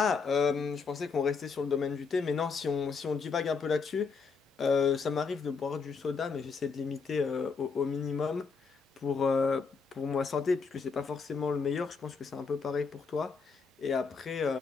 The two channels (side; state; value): right; quieter; 5.1 dB